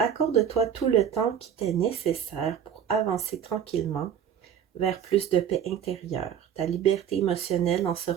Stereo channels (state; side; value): quieter; left; 8.6 dB